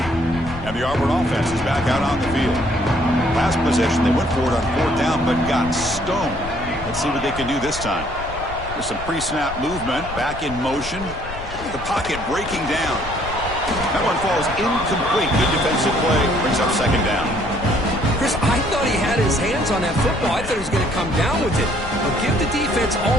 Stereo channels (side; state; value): left; noise; rumble, 11 dB below the sound